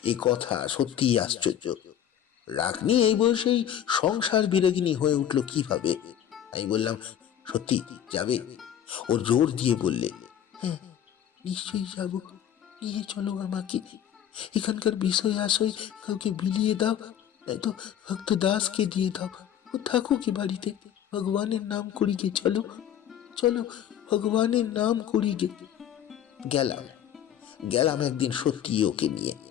এই কথা সত্যিই আশ্চর্য। রাগনি এই বয়সেই সংসার বিরাগিনী হয়ে উঠল কিভাবে? আমি বললাম, সত্যি যাবে? ওর জোর দিয়ে বললে, হ্যাঁ, নিশ্চয়ই যাব। নিয়ে চলো আমাকে। এখানকার বিষয় আশয় কাউকে বিলিয়ে দাও, নয়তো ভক্ত দাসকে দিয়ে দাও। ও থাকুক কি বাড়িতে, ভগবানের নাম করি গে। চলো, চলো, ভগবানের নাম করি গে। গেলাম গেলাম একদিন সত্যি ওকে নিয়ে।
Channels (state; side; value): quieter; right; 10.0 dB